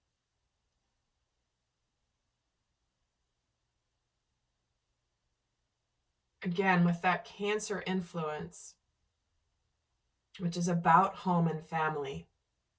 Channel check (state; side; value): identical; both; correlation 1.00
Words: again, with that Cancer influence, which is about home and family,